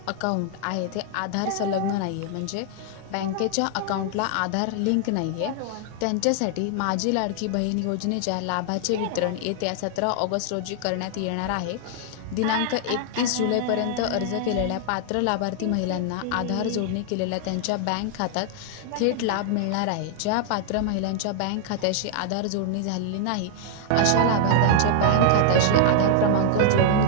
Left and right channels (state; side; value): different; both; correlation 0.00